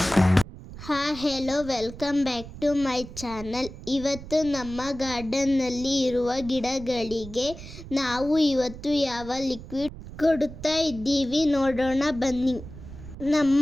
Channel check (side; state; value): right; noise; rumble, 14 dB below the sound